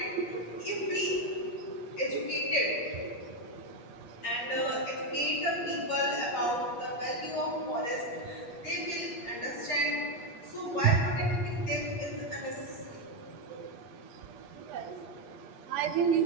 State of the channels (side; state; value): right; late; 8.4 ms